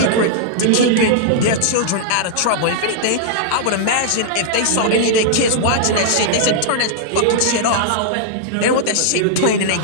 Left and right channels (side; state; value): both; different; correlation -0.01